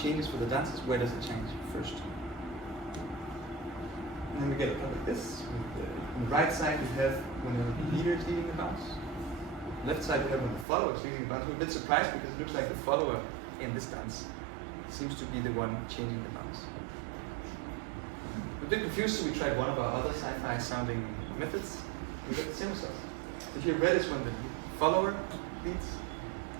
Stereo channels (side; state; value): left; drops out; at 10.7 s